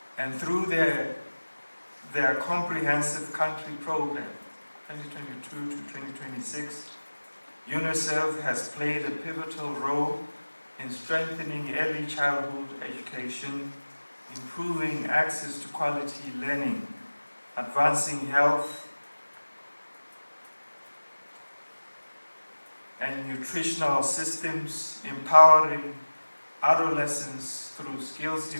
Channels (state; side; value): inverted; both; correlation -1.00